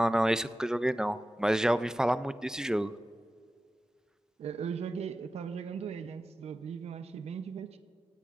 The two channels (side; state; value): both; normal; correlation 0.93